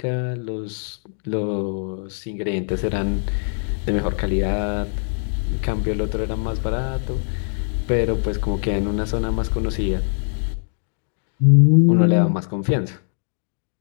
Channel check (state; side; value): silent; right; 64 dB below the other